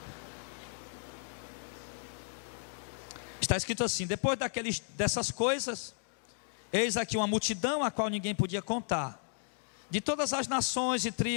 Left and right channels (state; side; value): silent; right; digital silence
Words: Está escrito assim: depois dessas coisas, eis aqui uma multidão a qual ninguém podia contar, de todas as nações e